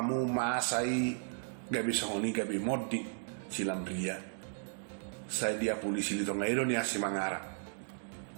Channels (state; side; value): silent; left; digital silence